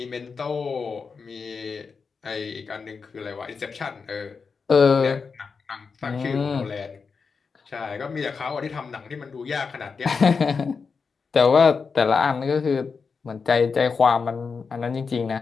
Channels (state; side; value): quieter; right; 5.2 dB